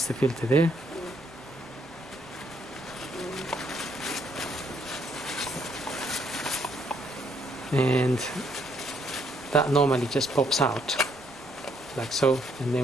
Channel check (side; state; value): both; normal; correlation 0.71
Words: the filter there. And that normally just pops out like so, and